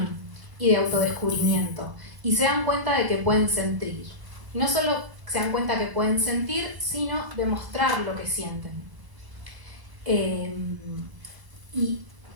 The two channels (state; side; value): late; left; 1.0 ms